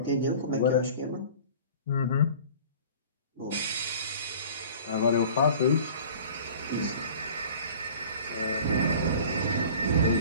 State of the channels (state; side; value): inverted; both; correlation -0.45